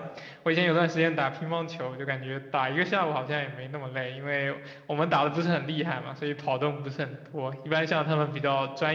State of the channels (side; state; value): both; identical; correlation 1.00